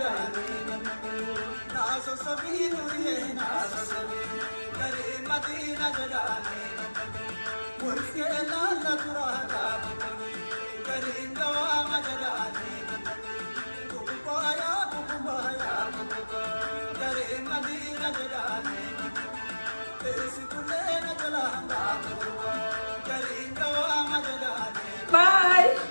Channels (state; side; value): inverted; both; correlation -1.00